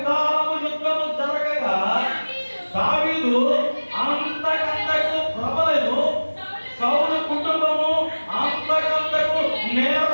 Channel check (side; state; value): both; inverted; correlation -1.00